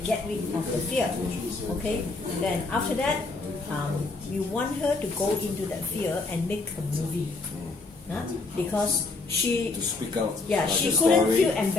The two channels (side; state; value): right; quieter; 3.6 dB